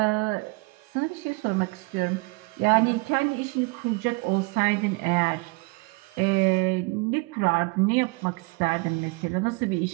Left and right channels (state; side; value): quieter; left; 29.2 dB